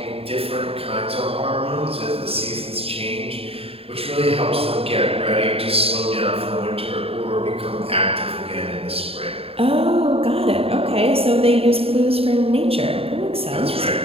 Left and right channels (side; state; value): left; late; 0.28 ms